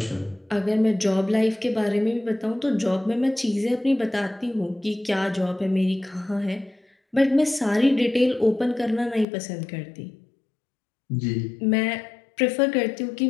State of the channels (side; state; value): right; drops out; at 9.2 s